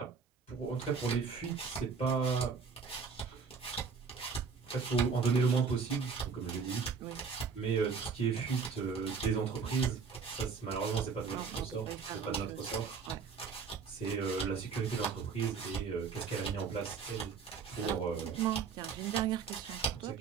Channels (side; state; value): left; quieter; 5.5 dB